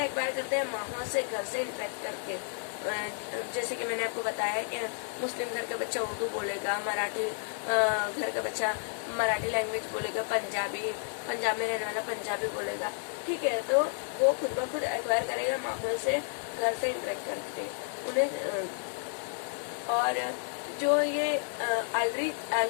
एक्वायर करते हैं? माहौल से, घर से इंटरेक्ट करके। जैसे कि मैंने आपको बताया कि मुस्लिम घर का बच्चा उर्दू बोलेगा, मराठी घर का बच्चा मराठी लैंग्वेज बोलेगा, पंजाब में रहने वाला पंजाबी बोलेगा, ठीक है। तो वो खुद ब खुद एक्वायर करेगा माहौल से, घर से इंटरेक्ट करके उन्हें। और जो ये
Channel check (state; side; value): silent; right; 57 dB below the other